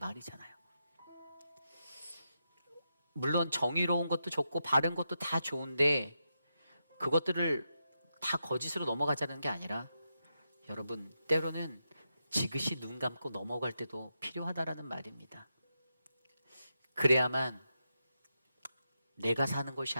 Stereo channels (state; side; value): inverted; both; correlation -0.86